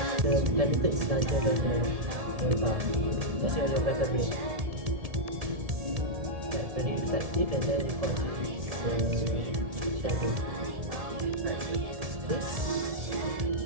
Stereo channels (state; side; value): late; left; 1.7 ms